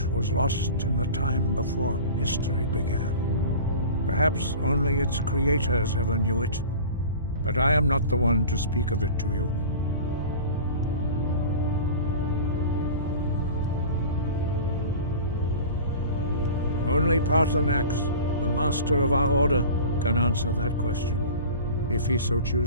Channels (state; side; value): inverted; both; correlation -0.38